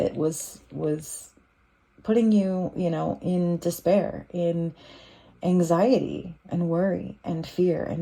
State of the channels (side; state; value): both; identical; correlation 1.00